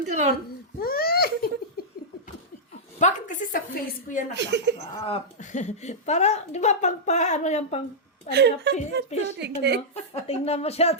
ka ron. Bakit kasi sa face ko yan nakaharap? Para, di ba, ano yung ano na, fish, ano? Tingnan mo siya,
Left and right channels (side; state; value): both; normal; correlation -0.09